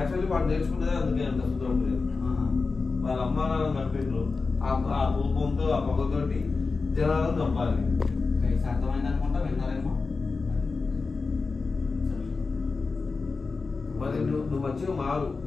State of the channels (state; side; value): quieter; right; 4.2 dB